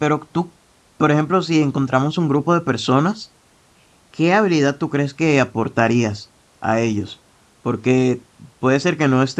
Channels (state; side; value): identical; both; correlation 1.00